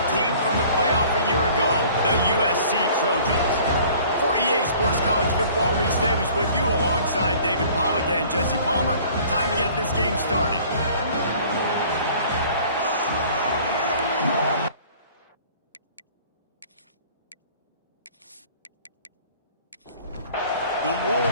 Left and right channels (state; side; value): inverted; both; correlation -0.50